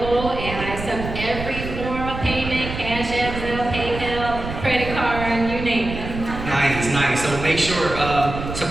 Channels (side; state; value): right; noise; rumble, 8 dB below the sound